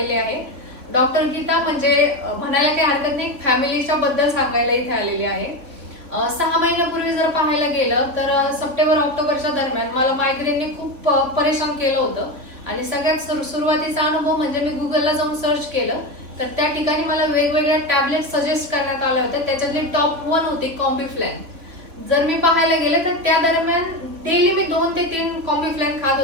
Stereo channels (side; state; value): left; late; 3.6 ms